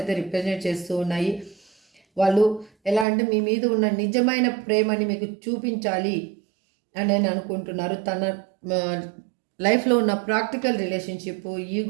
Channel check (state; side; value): drops out; left; at 3.1 s